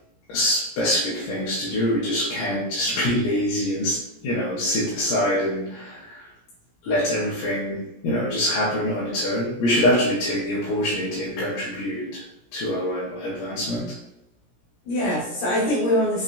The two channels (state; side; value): late; right; 17 ms